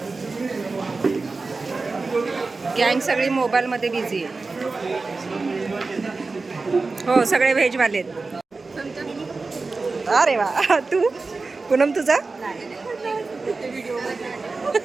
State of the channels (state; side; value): quieter; left; 3.9 dB